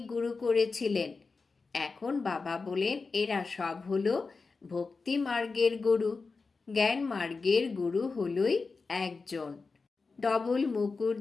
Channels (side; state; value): right; quieter; 4.3 dB